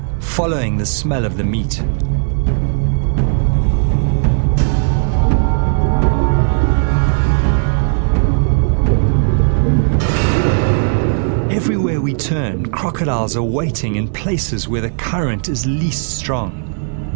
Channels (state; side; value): silent; left; digital silence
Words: following the smell of the meat. Everywhere we turn, crocodiles are waiting in places where the current is least strong.